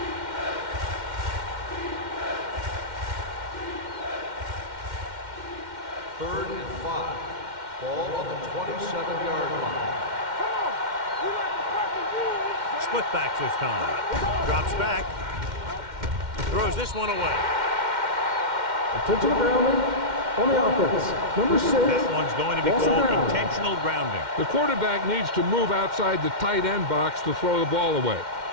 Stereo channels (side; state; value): left; late; 2.1 ms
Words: Third and 5. Ball on the 27-yard line. Split backs this time. Drops back. Throws this one away. Intentional grounding on the offense. Number 6. That one's going to be called intentional grounding. The quarterback needs to move outside the tight end box to throw the ball away.